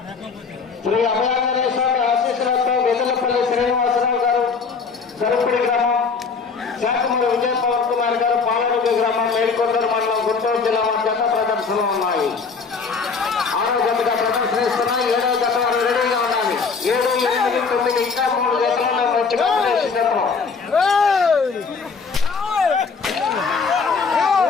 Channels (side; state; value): right; quieter; 5.1 dB